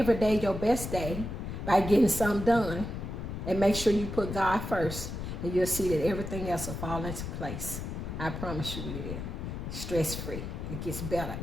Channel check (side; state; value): left; noise; rumble, 6 dB below the sound